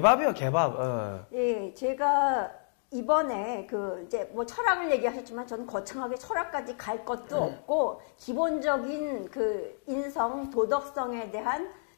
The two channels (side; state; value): right; silent; digital silence